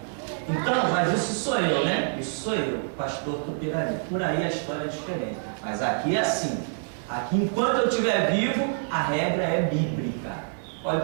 Então, mas isso sou eu, né? Isso sou eu, pastor Tupirani. Por aí a história é diferente. Mas aqui é assim. Aqui, enquanto eu estiver vivo, a regra é bíblica.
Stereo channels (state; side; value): silent; left; digital silence